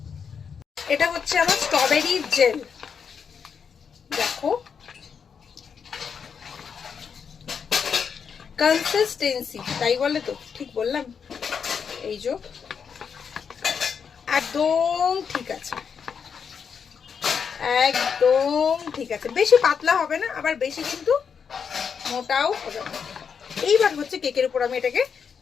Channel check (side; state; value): right; quieter; 6.6 dB